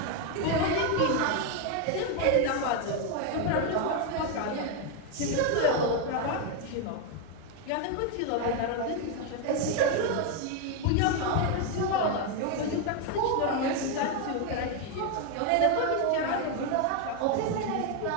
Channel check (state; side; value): different; both; correlation 0.01